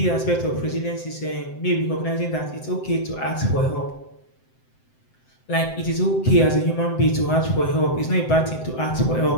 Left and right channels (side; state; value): right; late; 7.8 ms